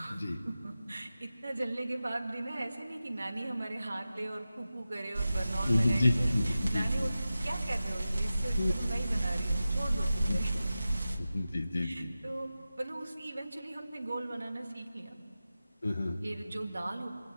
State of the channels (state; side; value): inverted; both; correlation -0.94